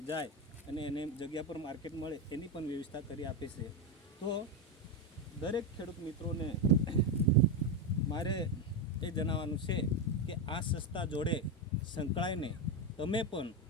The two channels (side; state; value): both; normal; correlation 0.09